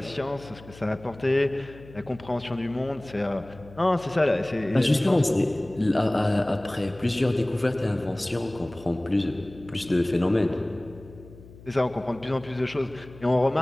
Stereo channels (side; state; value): left; noise; hum, 20 dB below the sound